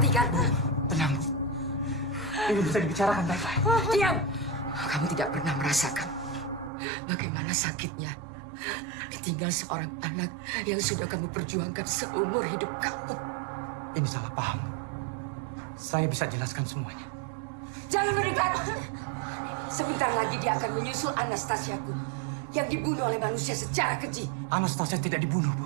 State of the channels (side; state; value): left; drops out; at 6.7 s